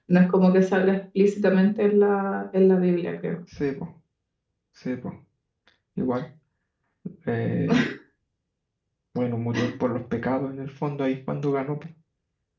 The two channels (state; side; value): identical; both; correlation 1.00